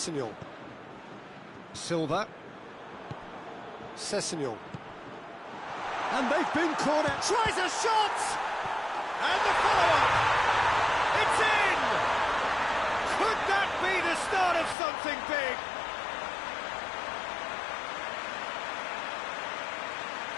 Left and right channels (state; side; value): drops out; right; at 14.8 s